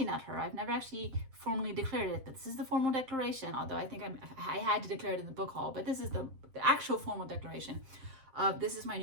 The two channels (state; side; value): late; left; 7.6 ms